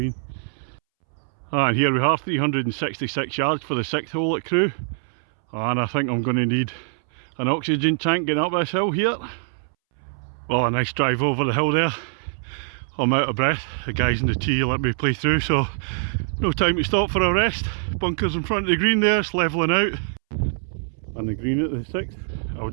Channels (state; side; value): silent; left; 63 dB below the other